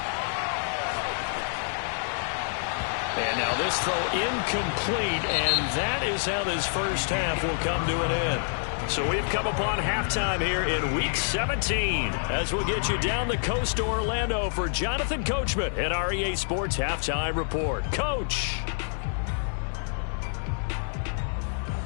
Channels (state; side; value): silent; right; 60 dB below the other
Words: And now this throw incomplete, and that is how this first half will come to an end. So we've come upon halftime here in Week 17 as we'll get you down the coast to Orlando for Jonathan Coachman at our EA Sports Halftime Report. Coach.